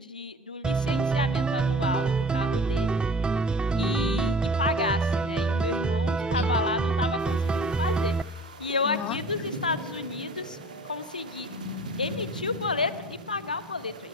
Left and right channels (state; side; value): normal; both; correlation 0.42